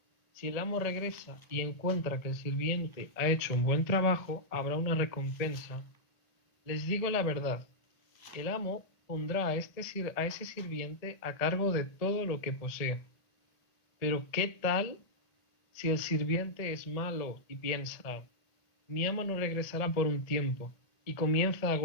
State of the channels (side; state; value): right; late; 1.7 ms